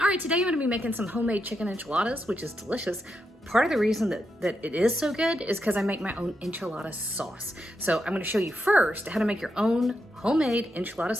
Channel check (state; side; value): normal; both; correlation 0.84